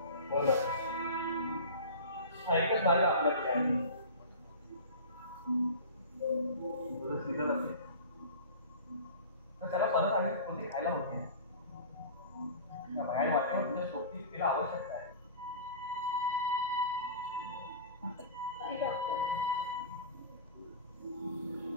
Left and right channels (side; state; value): both; inverted; correlation -0.34